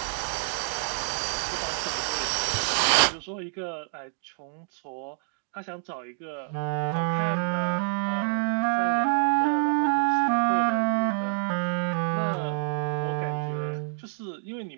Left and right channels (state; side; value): silent; left; 58 dB below the other